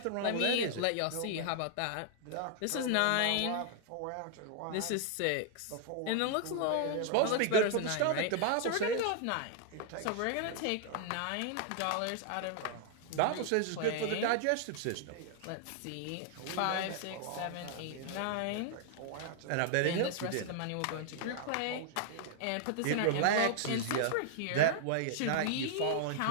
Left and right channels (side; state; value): both; different; correlation 0.00